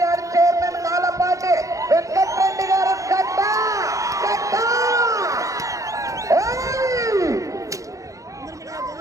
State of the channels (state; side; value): late; left; 0.16 ms